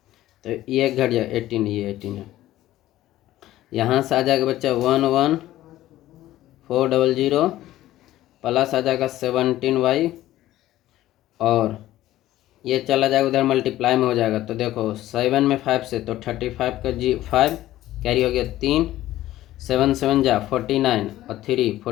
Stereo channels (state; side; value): quieter; right; 14.7 dB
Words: तो ये घट जाएगा 18, ये 18 है। यहाँ से आ जाएगा बच्चा 11400 प्लस आ जाएगा 17y और ये चला जाएगा उधर मल्टीप्लाई में हो जाएगा। तो देखो 7 में 5 से तो 35 का 5 कैरी हो गया 3, 7 7 जा 49 और 3